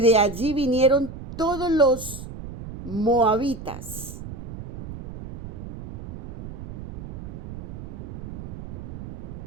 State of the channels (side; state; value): right; noise; rumble, 11 dB below the sound